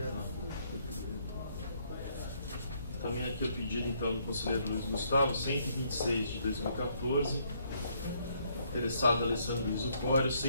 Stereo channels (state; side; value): inverted; both; correlation -0.70